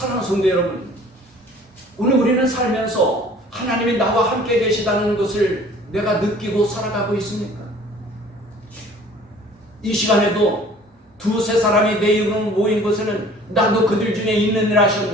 성도 여러분, 오늘 우리는 살면서 하나님이 나와 함께 계시다는 것을 내가 느끼고 살아가고 있습니까? 이 시간에도 두세 사람이 내 이름으로 모인 곳에는 나도 그들 중에 있느니라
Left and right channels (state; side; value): normal; both; correlation 0.51